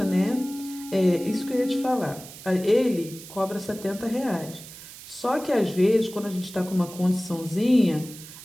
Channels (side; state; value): right; noise; hiss, 16 dB below the sound